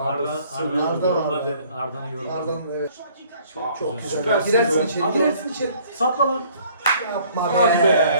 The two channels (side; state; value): both; inverted; correlation -0.58